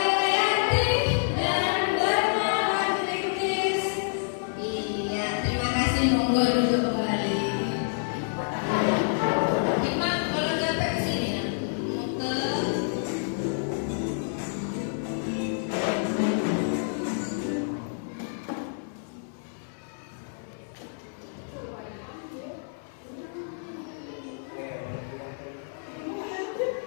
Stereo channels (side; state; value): right; silent; 59 dB below the other